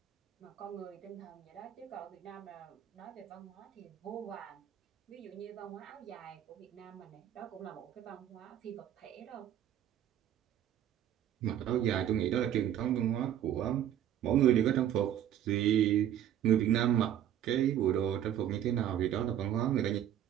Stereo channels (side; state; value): left; quieter; 10.7 dB